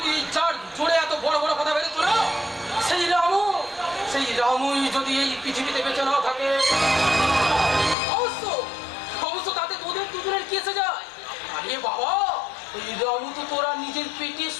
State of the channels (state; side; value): drops out; right; at 8.0 s